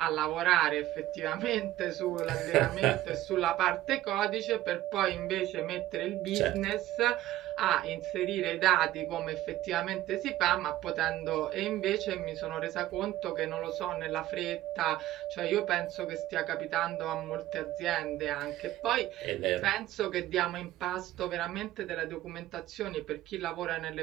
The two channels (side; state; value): left; quieter; 14.7 dB